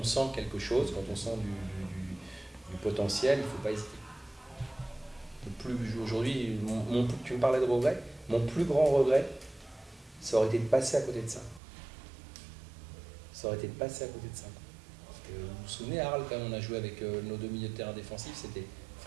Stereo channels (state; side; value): drops out; left; at 11.6 s